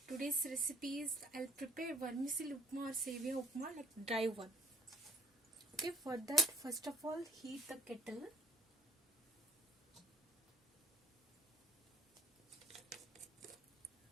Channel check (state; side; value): normal; both; correlation 0.56